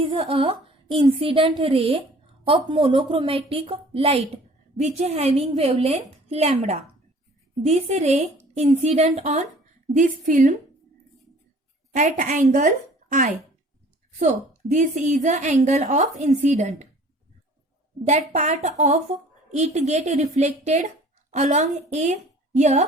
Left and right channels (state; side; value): normal; both; correlation 0.50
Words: a incident ray of monochromatic light which having wavelength lambda. This ray incident on this film at angle I. So this is the angle of incident. That part of it get reflected along